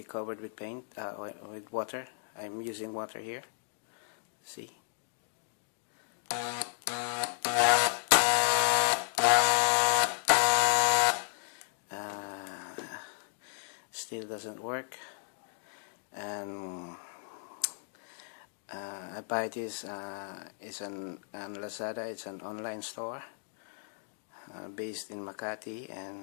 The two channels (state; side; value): silent; right; digital silence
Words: covered with paint, with water. I'm using water here. See. Still doesn't work, and I buy this. It's on Lazada. It's an online store based in Makati,